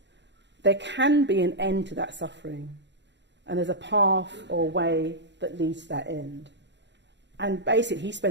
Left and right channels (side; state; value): left; late; 0.52 ms